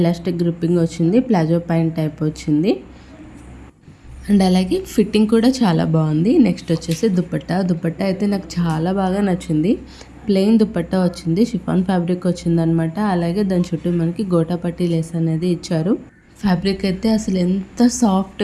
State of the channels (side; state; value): both; identical; correlation 1.00